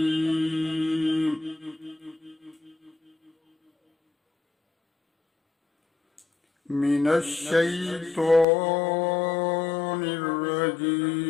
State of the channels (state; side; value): drops out; right; at 8.5 s